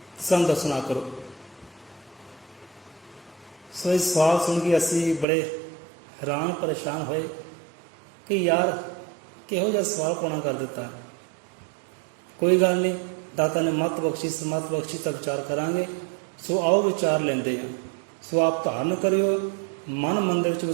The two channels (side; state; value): left; drops out; at 5.2 s